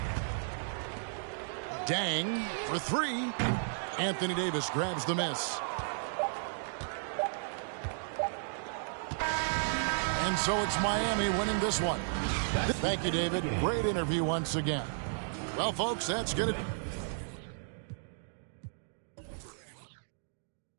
Dang for 3. Anthony Davis grabs the miss. And so it's Miami winning this one. Thank you, David. Great interview once again. Well, folks, that's going to...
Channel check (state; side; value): silent; left; digital silence